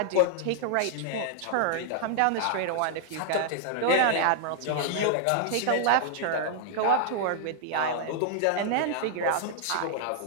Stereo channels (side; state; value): both; different; correlation -0.01